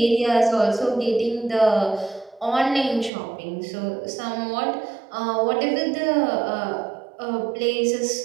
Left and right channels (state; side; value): drops out; left; at 3.1 s